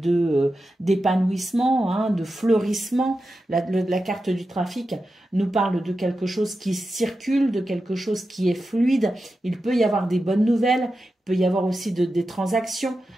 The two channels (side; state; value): both; normal; correlation 0.91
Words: d'épanouissement, de fleurissement. La carte du trafic nous parle de quelque chose qui circule, de quelque chose qui est fluide. Il peut y avoir des bonnes nouvelles, il peut y avoir aussi des transactions